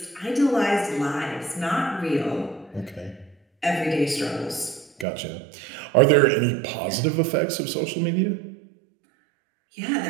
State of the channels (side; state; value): left; drops out; at 5.1 s